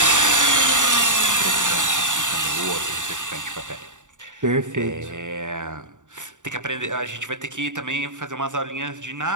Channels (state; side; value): late; left; 0.86 ms